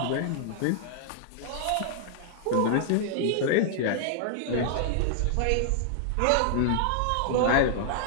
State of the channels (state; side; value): different; both; correlation -0.01